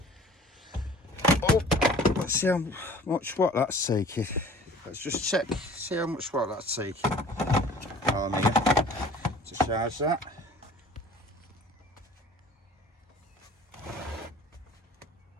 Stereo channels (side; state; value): both; normal; correlation 0.47